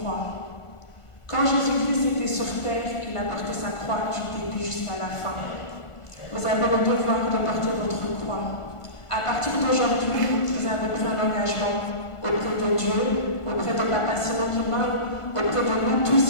Quand Jésus-Christ était sur terre, il a porté sa croix du début jusqu'à la fin. Vous avez le devoir de porter votre croix. À partir d'aujourd'hui, vous avez pris un engagement auprès de Dieu, auprès de Papa Simon Kimbangu, auprès de nous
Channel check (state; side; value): late; right; 1.5 ms